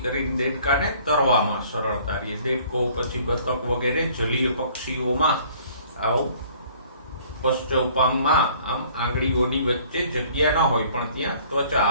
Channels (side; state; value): both; inverted; correlation -0.55